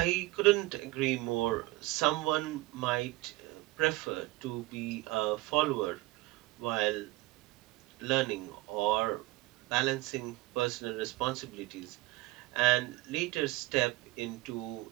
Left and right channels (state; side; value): quieter; left; 19.9 dB